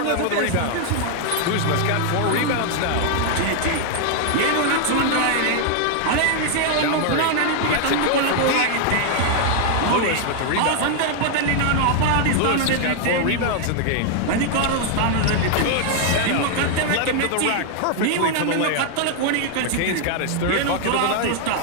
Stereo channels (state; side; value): different; both; correlation 0.00